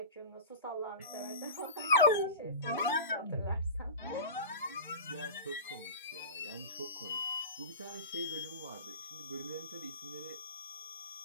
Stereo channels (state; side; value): inverted; both; correlation -0.31